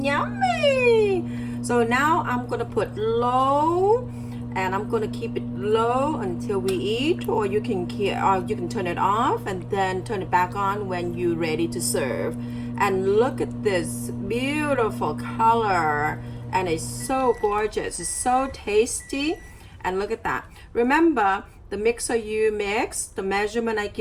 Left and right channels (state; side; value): identical; both; correlation 1.00